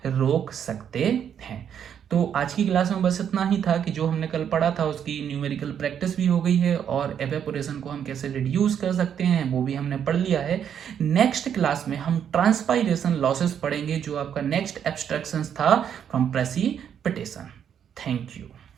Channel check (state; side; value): quieter; left; 8.6 dB